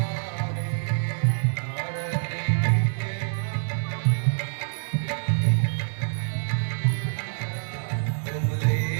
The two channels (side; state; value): left; silent; digital silence